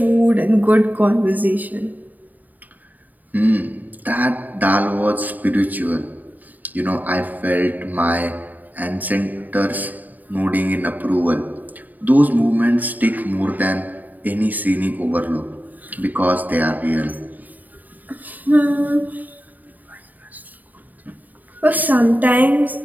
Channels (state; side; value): late; left; 0.082 ms